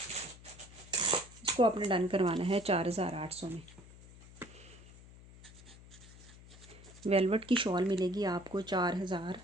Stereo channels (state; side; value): noise; left; hum, 20 dB below the sound